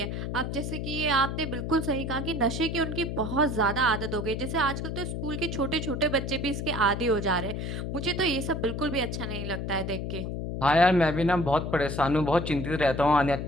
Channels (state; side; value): noise; left; hum, 4 dB below the sound